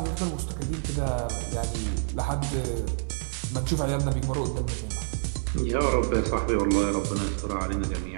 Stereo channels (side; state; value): left; silent; digital silence